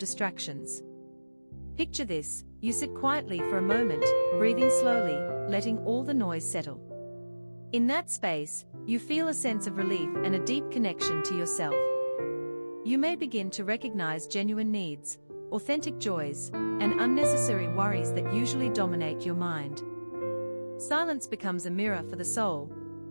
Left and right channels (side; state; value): both; inverted; correlation -1.00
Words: Picture this: you sit quietly for a moment, breathing slowly, letting all the noise settle. In that space, you feel a sense of relief and a deep connection to yourself. You may begin to recognize genuine needs, authentic joys, and unnecessary worries that usually dominate your mind. Silence becomes a mirror for the soul,